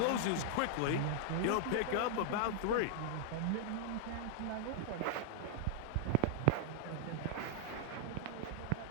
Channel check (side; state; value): both; different; correlation -0.01